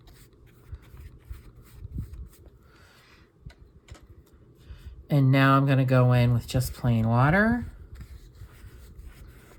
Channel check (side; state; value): both; identical; correlation 1.00